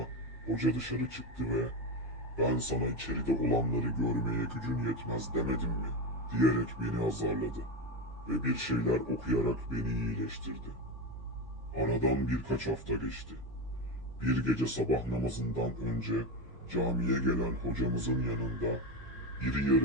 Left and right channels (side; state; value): both; normal; correlation 0.16